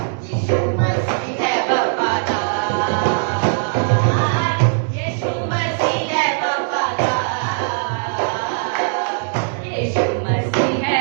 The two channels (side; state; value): left; silent; digital silence